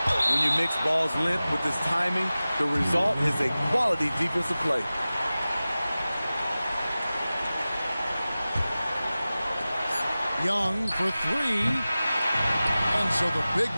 When you mix ball's length with this timing, the result is a quality defensive play. Young for 3. And so the big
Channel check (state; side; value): inverted; both; correlation -0.96